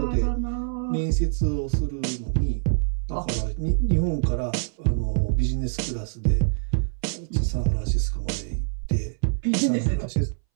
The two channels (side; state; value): left; silent; 62 dB below the other